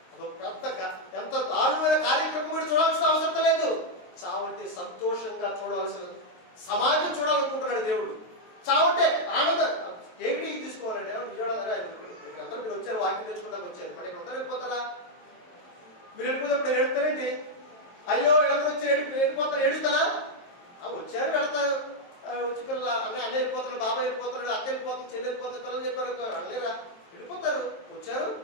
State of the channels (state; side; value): late; right; 23 ms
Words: అదొక పెద్ద ఎంత దారుణమైన కార్యక్రమం మీరు చూడాల్సిన అవసరం లేదు. చావంటే సంతోషంగా చూడాల్సిన సమాజం చూడాలనుకుంటున్నాడు దేవుడు. చావంటే ఆనందం. ఏమిటి తీసుకోవాలండి? అందరూ మీరు వచ్చారు, వాక్యం తెచ్చుకుంటానికి వచ్చారు, మరి ఇక్కడ ఉంటారు, వెళ్ళిపోతారా? మీరు వెళ్ళిపోయినప్పుడు నేను ఏడుతారేంటి? అయ్యో వీళ్ళందరూ వచ్చి వెళ్ళిపోతారు, ఏడుస్తారా? వచ్చారు, వెళ్తారు. వచ్చి పిల్లలు అన్న వెళ్ళిపోతున్నాడు, బాబాయ్ వెళ్ళిపోతున్నాడు, అక్క వెళ్ళిపోతుంది, చెల్లి వెళ్ళిపోతుంది, పిల్లలు చెప్పారు అనలేరా? వెళ్ళిపోతారు. వచ్చారు,